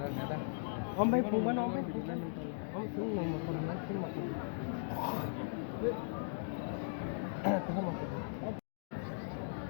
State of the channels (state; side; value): silent; right; digital silence